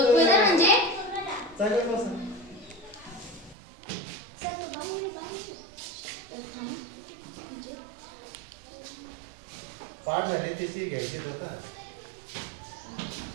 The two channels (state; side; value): drops out; left; at 3.6 s